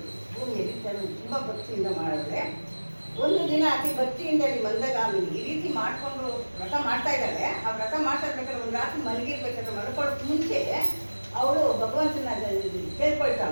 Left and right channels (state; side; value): inverted; both; correlation -1.00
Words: ಭೂಮಿಯಲ್ಲಿ ತುಂಬ ಭಕ್ತಿಯಿಂದ ಮಾಡಿದ್ರೆ ಒಂದು ದಿನ ಅತಿ ಭಕ್ತಿಯಿಂದ ಮಂದಗಾಮಿನಿ ಈ ರೀತಿ ಮಾಡಿಕೊಂಡು ವ್ರತ ಮಾಡ್ತಾ ಇದ್ದಾಳೆ. ಆ ವ್ರತ ಮಾಡ್ತಾ ಇರ್ಬೇಕಾದ್ರೆ ಒಂದು ರಾತ್ರಿ ಮಲಗಿರ್ಬೇಕಾದ್ರೆ ಮಲ್ಕೊಳ್ಳೋಕೆ ಮುಂಚೆ ಅವಳು ಭಗವಂತನ